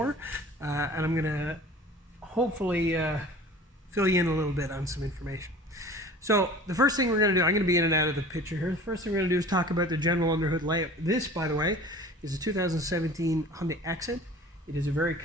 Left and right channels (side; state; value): both; normal; correlation 0.43